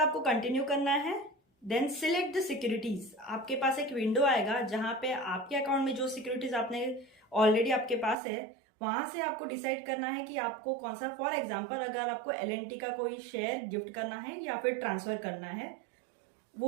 कंटिन्यू करना है। Then select the securities. आपके पास एक विंडो आएगा जहां पे आपके अकाउंट में जो सिक्योरिटीज आपने ऑलरेडी आपके पास है वहां से आपको डिसाइड करना है कि आपको कौन सा, फॉर एग्जाम्पल अगर आपको LNT का कोई शेयर गिफ्ट करना है या फिर ट्रांसफर करना है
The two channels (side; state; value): left; drops out; at 8.2 s